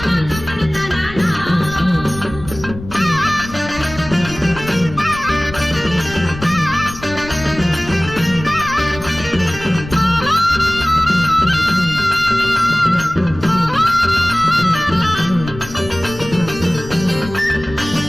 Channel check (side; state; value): left; noise; rumble, 13 dB below the sound